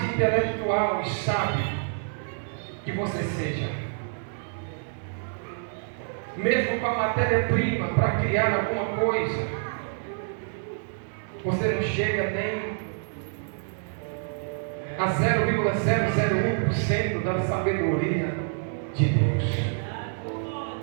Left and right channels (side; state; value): left; silent; digital silence